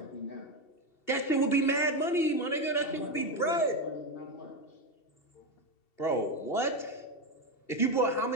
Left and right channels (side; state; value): right; late; 2.7 ms